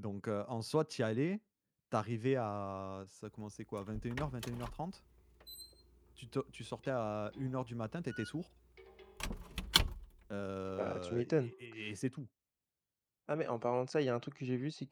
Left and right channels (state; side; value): identical; both; correlation 1.00